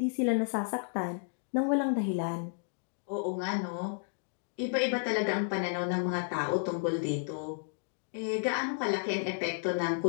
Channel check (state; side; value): silent; right; digital silence